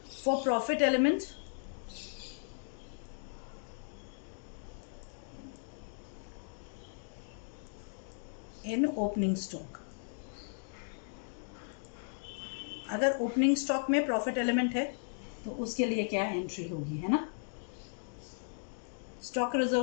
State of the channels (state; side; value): silent; right; digital silence